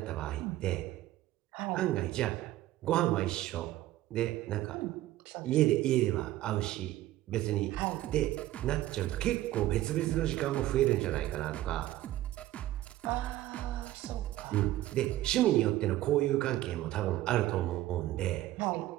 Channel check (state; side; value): quieter; left; 15.1 dB